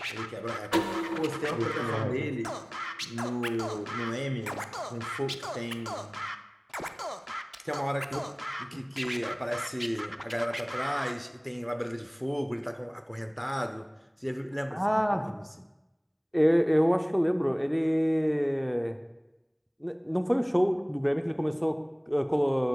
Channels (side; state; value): both; identical; correlation 1.00